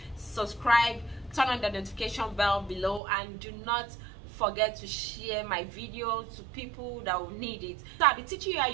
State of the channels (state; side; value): drops out; left; at 3.0 s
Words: subscribe, turn on the notification bell below, and do not forget to share my video to people that will need it. So I'll be teaching you how